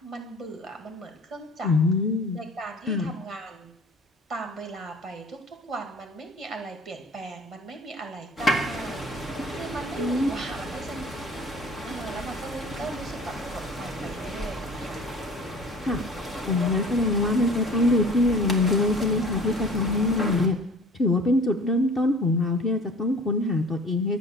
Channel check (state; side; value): normal; both; correlation 0.45